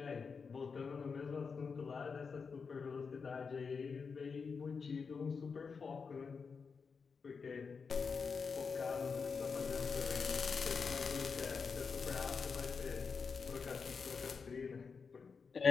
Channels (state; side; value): quieter; right; 5.4 dB